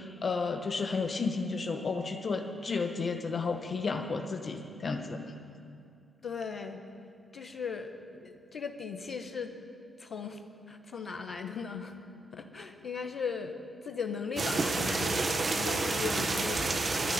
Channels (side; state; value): both; normal; correlation 0.80